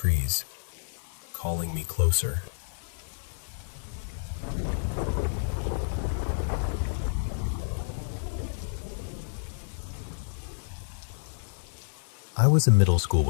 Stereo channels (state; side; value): silent; right; 58 dB below the other